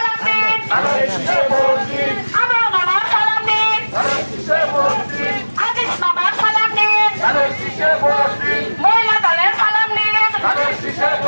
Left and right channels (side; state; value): both; inverted; correlation -1.00